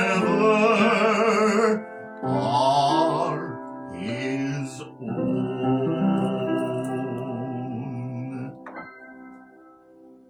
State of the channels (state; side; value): identical; both; correlation 1.00